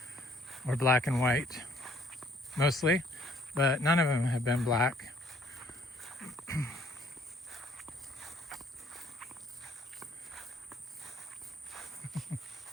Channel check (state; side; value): normal; both; correlation 0.61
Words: or black and white, mostly, but none of them have been black.